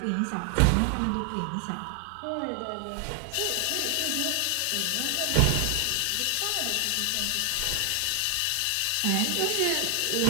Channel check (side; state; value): both; different; correlation 0.00